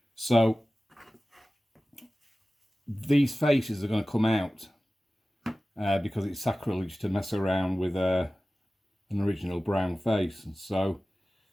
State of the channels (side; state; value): both; normal; correlation 0.96